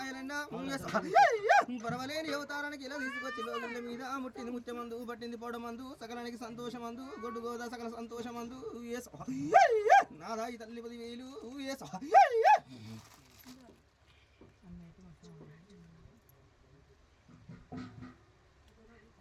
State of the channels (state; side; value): identical; both; correlation 1.00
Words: పరవలేని అవతారానికి ఇలా తీసుకొచ్చి లోకిల మీద ముట్టింది ముత్యమందు పట్టింది పొడమందు సకలానికి సంతోషమందు గొడ్డు గోదా సకల సంతోషమందు నాదాయి తల్లి 10,000